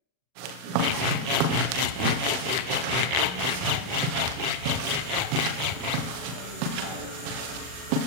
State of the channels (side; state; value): left; late; 39 ms